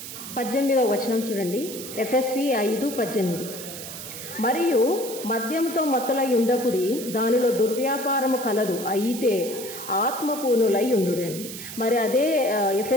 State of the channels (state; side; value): noise; right; hiss, 10 dB below the sound